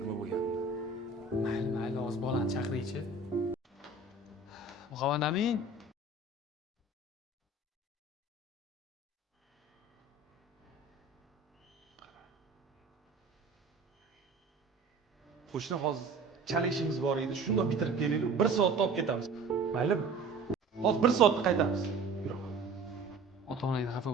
nima bo'lganini? Mayli, hozir bolani chaqiraychi. Muhammad Amin. Qo'shni hozir chala ishimiz bor edi. Shundoq bitirib kelaylik. 1 soatda olib ketamiz. Maylimi? Hozir 1 soatda qaytamiz. Yurib. Ota-onangdan xafa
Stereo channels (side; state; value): left; quieter; 3.4 dB